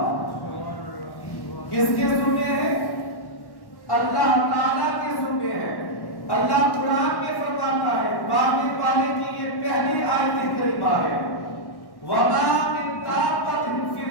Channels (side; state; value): right; late; 1.1 ms